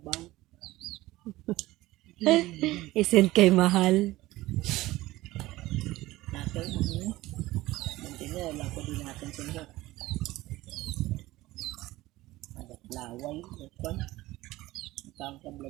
Isend kay mahal. Natin, mantina, wala ko din natin siya. Laway, ito. Ang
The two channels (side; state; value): left; quieter; 17.8 dB